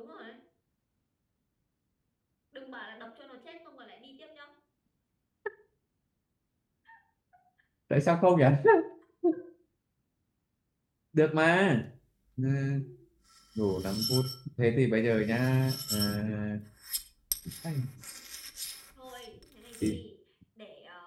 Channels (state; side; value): identical; both; correlation 1.00